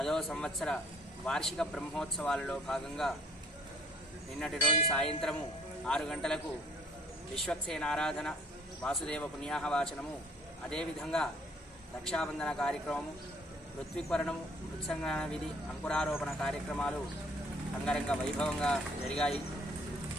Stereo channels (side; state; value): both; normal; correlation 0.58